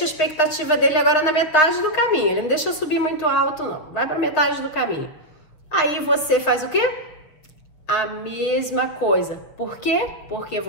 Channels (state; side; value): late; right; 6.6 ms